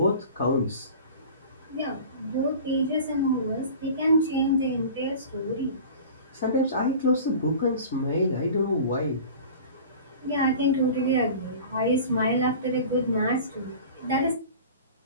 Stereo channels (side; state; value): both; inverted; correlation -0.39